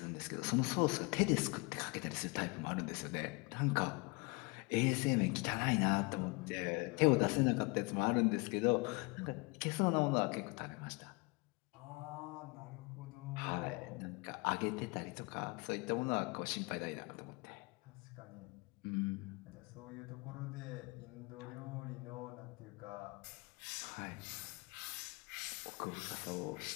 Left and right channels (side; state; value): right; quieter; 28.1 dB